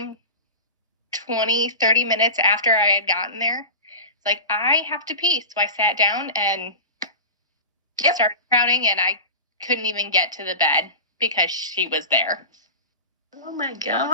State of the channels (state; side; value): inverted; both; correlation -0.31